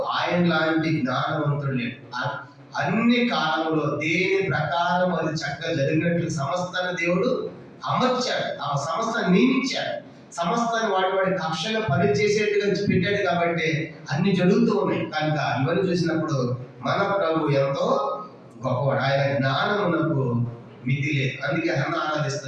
ఆయన లాంటి జ్ఞానవంతుడు లేడు. అన్ని కాలంలో దేని ప్రకారం అది చక్కగా జరిగినట్లు సమస్తాన్ని దేవుడు అమర్చాడు, ఆ సమస్తాన్ని నియమించాడు. సమస్తాన్ని వాడి కక్షగా పనిచేసేట్టుగా పెట్టాడు. కాబట్టి అన్ని జరుగుతూ ఉన్నాయి. కనుక ఇవన్నీ చూసినప్పుడు మన ప్రభు ఎంతో గొప్పవాడు. ఆయన జ్ఞానమునకు మితి లేదు. అందుకే హన్న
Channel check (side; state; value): both; identical; correlation 1.00